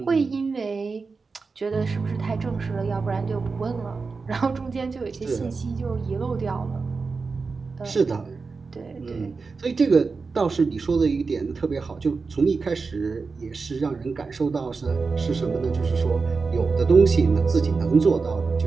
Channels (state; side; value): quieter; left; 4.5 dB